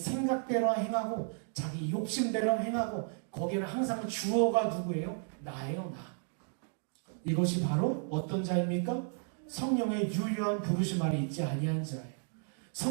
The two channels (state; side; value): silent; left; 56 dB below the other